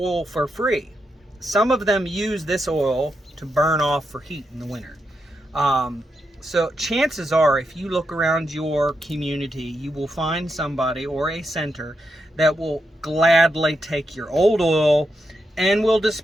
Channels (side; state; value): both; normal; correlation 0.84